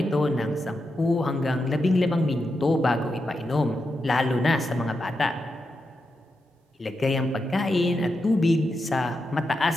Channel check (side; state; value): both; normal; correlation 0.87